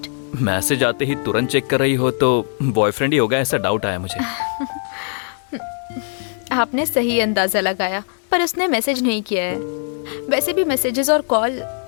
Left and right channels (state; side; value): silent; right; 55 dB below the other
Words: मैसेज आते ही तुरंत चेक कर रही हो तो बॉयफ्रेंड ही होगा, ऐसा डाउट आया मुझे। आपने सही अंदाजा लगाया, पर उसने मैसेज नहीं किया है। वैसे भी मैसेजेस और कॉल